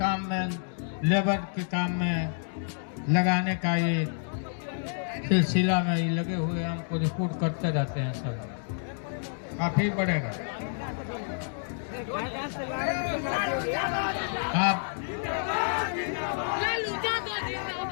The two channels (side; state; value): right; silent; digital silence